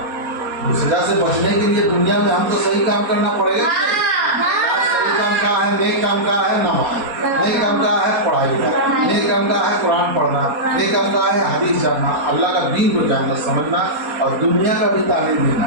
उस सजा से बचने के लिए दुनिया में हमको सही काम करना पड़ेगा। सही काम का है, नेक काम का है नमाज, नेक काम का है पढ़ाई का, नेक काम का है कुरान पढ़ना, नेक काम का है हदीस जानना, अल्लाह का दीन को जानना समझना और दुनिया का भी तालीम देना।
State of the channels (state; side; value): late; left; 4.2 ms